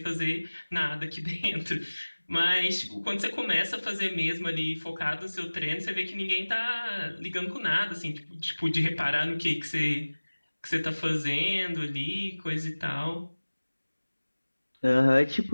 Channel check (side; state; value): both; inverted; correlation -1.00